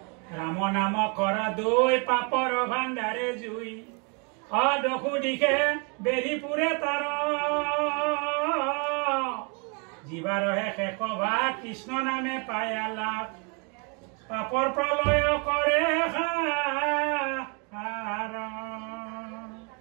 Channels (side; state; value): left; quieter; 34.6 dB